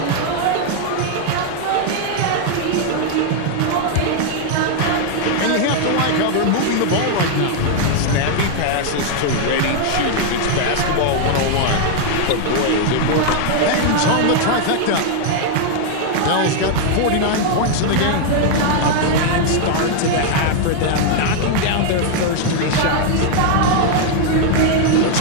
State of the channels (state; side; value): different; both; correlation 0.00